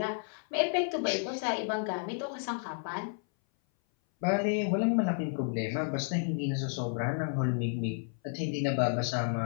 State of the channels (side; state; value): right; silent; 57 dB below the other